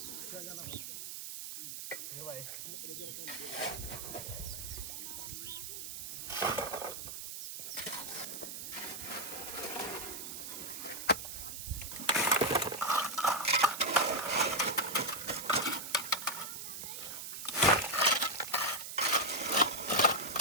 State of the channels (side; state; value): right; noise; hiss, 7 dB below the sound